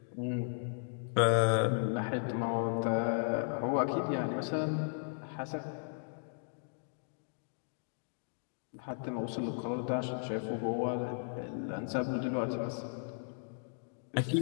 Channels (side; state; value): right; silent; digital silence